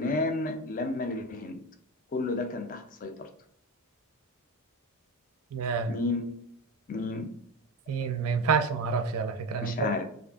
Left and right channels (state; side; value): normal; both; correlation 0.22